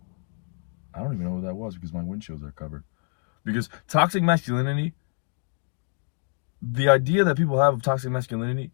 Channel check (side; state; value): right; quieter; 39.9 dB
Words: I don't even know what that was because my windshields are covered. Because toxic masculinity, the idea that people have of toxic masculinity